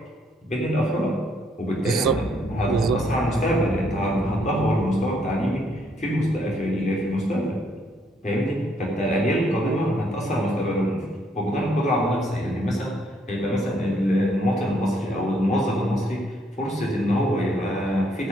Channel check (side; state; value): both; normal; correlation 0.70